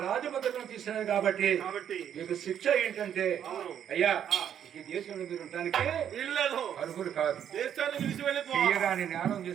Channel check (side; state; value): left; quieter; 9.3 dB